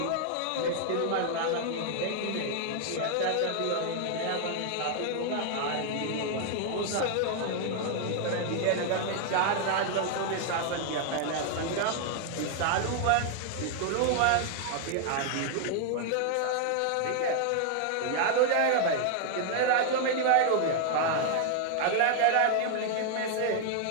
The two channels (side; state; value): both; different; correlation 0.00